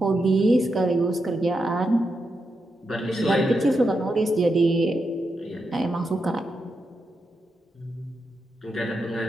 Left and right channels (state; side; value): normal; both; correlation 0.85